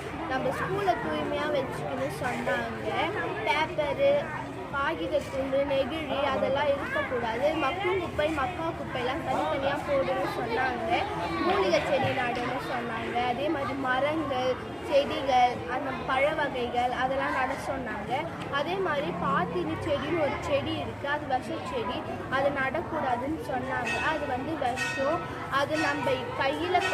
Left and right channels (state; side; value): identical; both; correlation 1.00